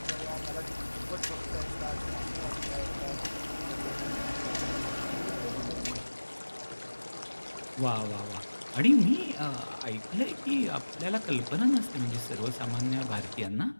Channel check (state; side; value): inverted; both; correlation -1.00